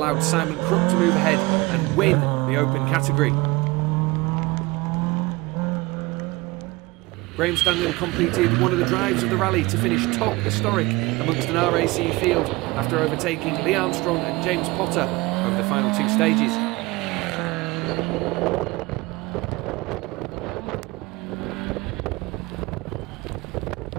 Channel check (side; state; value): left; quieter; 22.5 dB